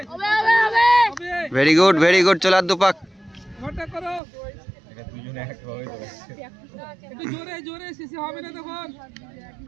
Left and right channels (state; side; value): drops out; left; at 4.2 s